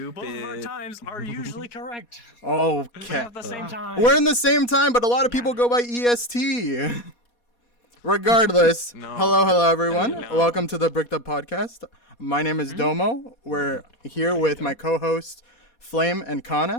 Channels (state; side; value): late; right; 4.2 ms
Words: of our Stupid. times are usually correct. Okay. At the same time. We're in the same time, but a lot of people go by EST. Regardless, No. hello, everyone. No. Welcome to the Bricked Up Podcast. My name is Domo. We're here with my co-hosts, Flame and